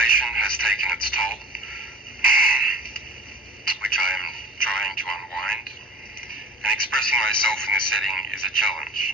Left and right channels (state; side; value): normal; both; correlation 0.40